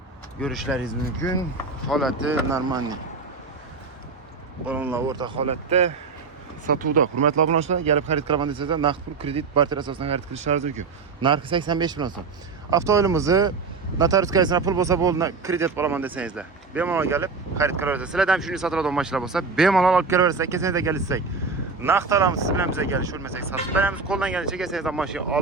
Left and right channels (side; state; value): left; quieter; 4.6 dB